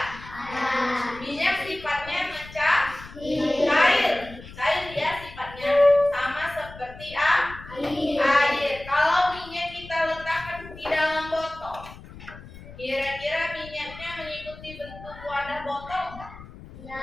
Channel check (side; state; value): left; noise; rumble, 17 dB below the sound